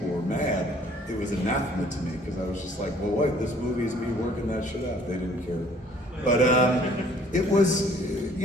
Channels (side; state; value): both; normal; correlation 0.57